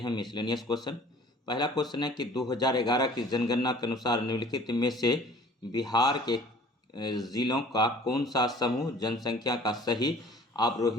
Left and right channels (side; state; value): both; normal; correlation 0.50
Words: मिसलेनियस क्वेश्चन। पहला क्वेश्चन है कि 2011 की जनगणना के अनुसार निम्नलिखित में से बिहार के जिलों का कौन सा समूह जनसंख्या का सही